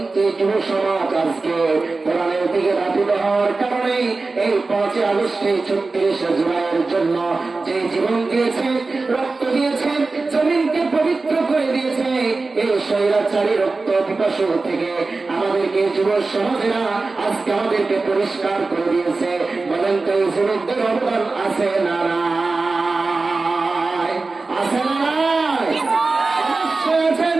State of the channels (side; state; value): left; quieter; 3.7 dB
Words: যুব সমাজ আজকে কোরআনের দিকে ধাবিত হওয়ার কারণে এই 5 আগস্টে 36 জুলাইয়ের জন্য যে জীবন দিয়েছে, রক্ত দিয়েছে, জমিনকে পবিত্র করে দিয়েছে, এই স্বৈরাচারী রক্ত পিপাসু থেকে আমাদেরকে যুব সমাজেরা আজকে আমাদেরকে পরিষ্কার করে দিয়েছে। বলেন তো এই যুবকদের অবদান আছে না নাই? আছে না নাই? অবশ্যই আছেন।